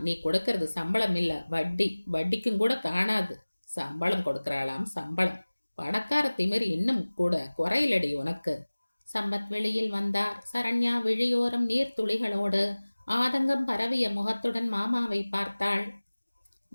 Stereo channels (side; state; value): both; inverted; correlation -1.00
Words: நீ கொடுக்கறது சம்பளம் இல்ல, வட்டி. வட்டிக்கும் கூட காணாது. சம்பளம் கொடுக்கறாளாம், சம்பளம். பணக்கார திமிர் இன்னும் கூட குறையிலடி உனக்கு. சம்பத் வெளியில் வந்தார். சரண்யா விழியோரம் நீர்த்துளிகளோடு ஆதங்கம் பரவிய முகத்துடன் மாமாவை பார்த்தாள்.